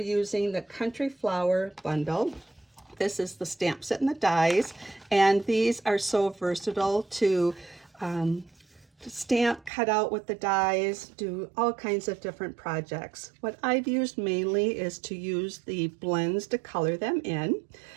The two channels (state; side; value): drops out; left; at 9.7 s